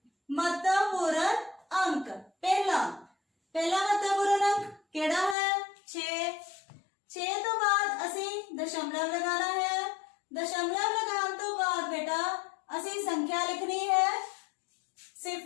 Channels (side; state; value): right; drops out; at 5.4 s